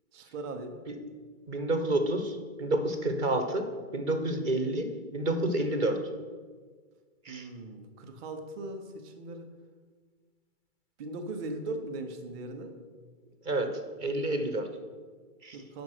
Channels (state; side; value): late; left; 2.3 ms